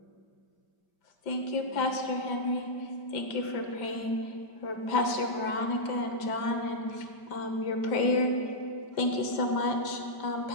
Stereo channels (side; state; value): right; late; 5.1 ms